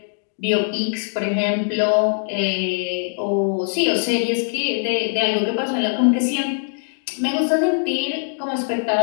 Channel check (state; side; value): silent; right; 64 dB below the other